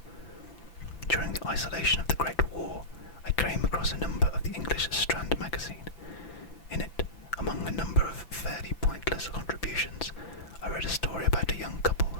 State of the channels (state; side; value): late; right; 5.9 ms